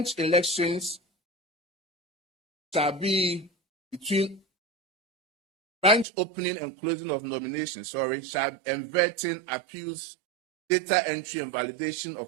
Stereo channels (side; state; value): left; drops out; at 6.1 s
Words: elections shall be between branch opening and closing of nominations, and vetting, appeals, data entry, and validation of